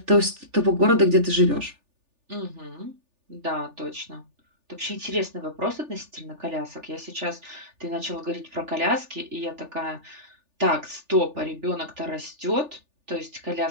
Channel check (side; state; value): left; late; 3.4 ms